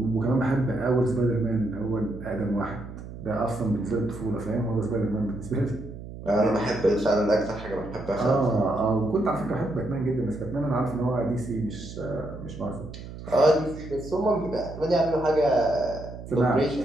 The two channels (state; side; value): noise; right; hum, 12 dB below the sound